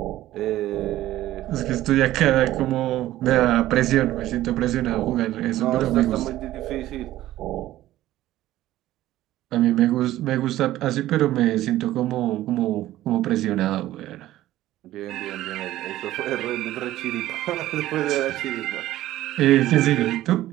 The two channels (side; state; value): left; quieter; 14.7 dB